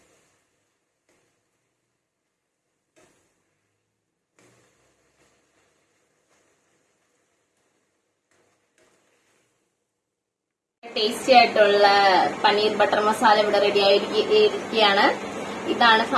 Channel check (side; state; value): both; identical; correlation 1.00